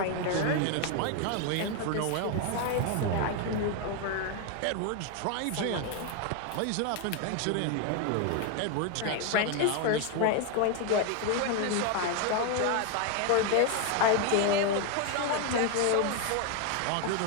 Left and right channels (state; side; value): different; both; correlation 0.01